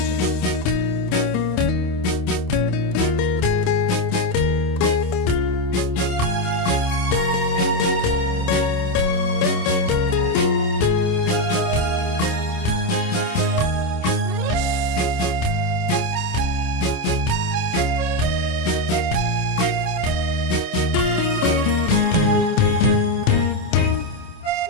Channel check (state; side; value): late; right; 27 ms